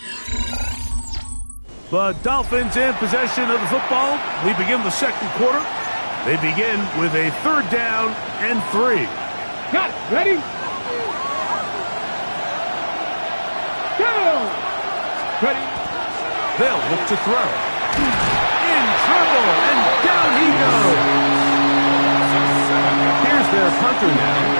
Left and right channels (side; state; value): both; inverted; correlation -1.00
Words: The Dolphins in possession of the football. We begin the second quarter. They begin with a 3rd down and 3. Got it. Ready? Go! Ready? They'll look to throw. In trouble, and down he goes. Here's their punter now,